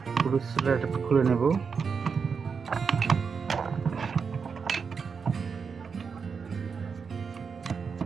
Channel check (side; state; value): left; quieter; 5.7 dB